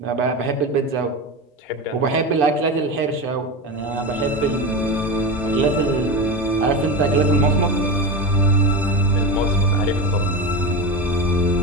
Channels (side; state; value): both; normal; correlation 0.21